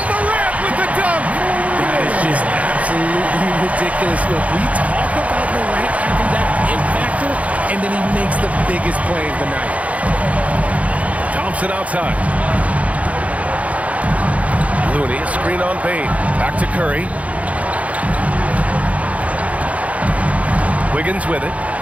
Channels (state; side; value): late; left; 0.067 ms